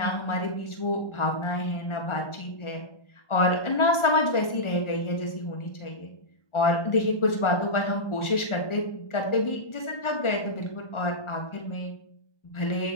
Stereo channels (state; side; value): late; right; 1.4 ms